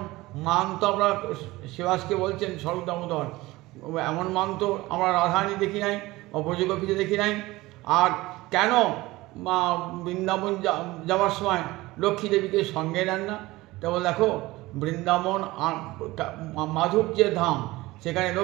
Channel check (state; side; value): quieter; left; 19.5 dB